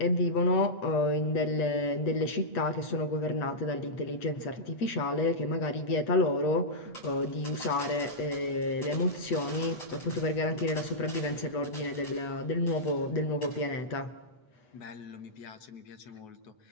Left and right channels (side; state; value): right; late; 8.1 ms